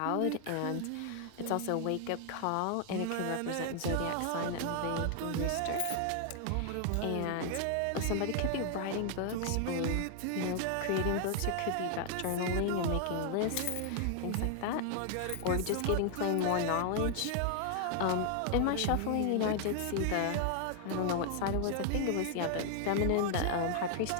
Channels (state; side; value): different; both; correlation 0.00